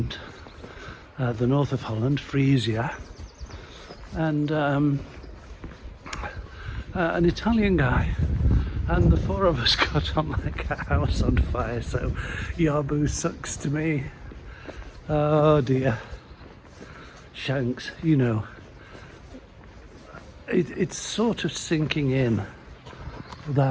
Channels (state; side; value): identical; both; correlation 1.00